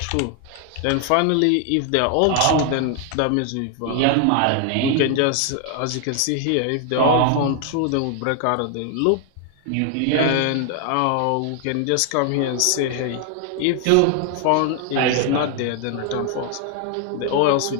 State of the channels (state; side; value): different; both; correlation 0.00